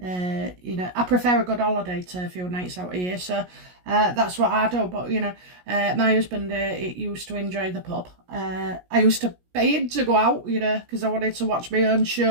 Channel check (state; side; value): late; left; 17 ms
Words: prefer a good holiday to a few nights out of here, so that's what I do. But my husband used to enjoy the pub. I used to pay him to go out, because I wanted to watch my own